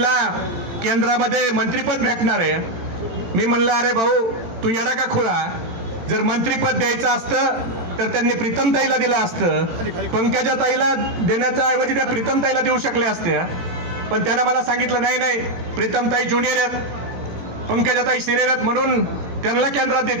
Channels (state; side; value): late; left; 18 ms